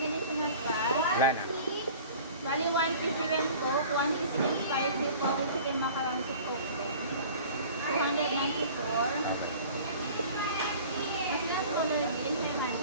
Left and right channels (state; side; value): inverted; both; correlation -0.44